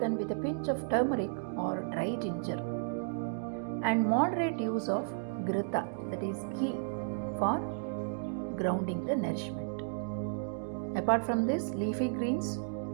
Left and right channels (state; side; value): silent; left; digital silence